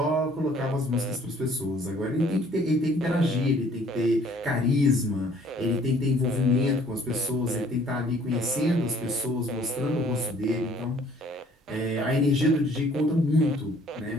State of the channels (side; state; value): both; normal; correlation 0.58